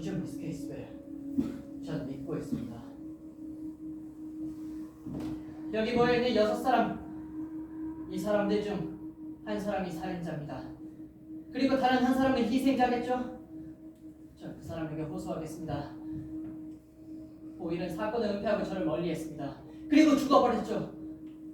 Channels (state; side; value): identical; both; correlation 1.00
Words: 미스 케이스웰. 전 믿고 있습니다. 여기 모여있는 6사람, 이 사람들 중 한 사람이 살인자입니다. 그리고 다른 한 사람은 희생자겠죠? 전 그 사람에게 호소하겠습니다. 오일은 사건을 은폐하고 저를 멀리했습니다. 그리고 죽어버렸죠.